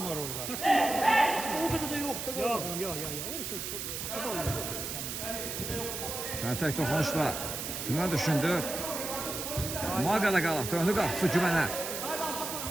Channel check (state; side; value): noise; right; hiss, 5 dB below the sound